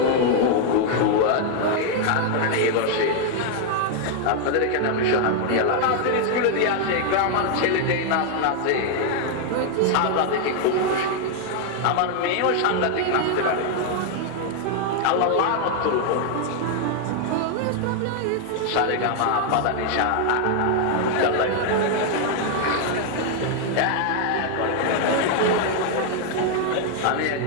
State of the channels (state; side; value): different; both; correlation 0.00